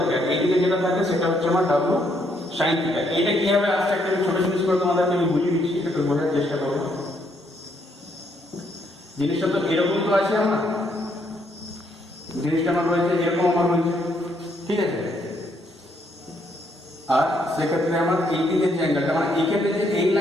এইদিকে যেটা থাকে সেটা হচ্ছে আমার ডাব্লু সাইন থিটা। এইটা কিভাবে আসছে একটা ছোট জিনিস করে তোমাদেরকে আমি বুঝিয়ে দিচ্ছি, একটু বোঝার চেষ্টা করবো। জিনিসটা তো এরকম তো আছে, আমার জিনিসটা আমার রয়েছে এরকম আমার রয়েছে, ঠিক আছে। আর সেক্ষেত্রে আমার এই দিকে যে অ্যাঙ্গেলটা মানে এইখানে যে এই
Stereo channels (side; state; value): both; normal; correlation 0.72